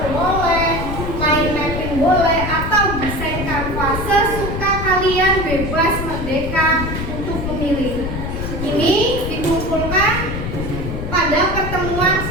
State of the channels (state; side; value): noise; left; rumble, 5 dB below the sound